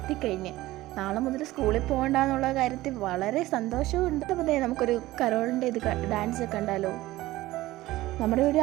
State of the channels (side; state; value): left; quieter; 17.2 dB